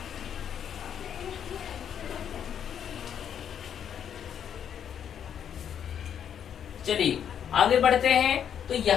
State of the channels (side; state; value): right; quieter; 8.8 dB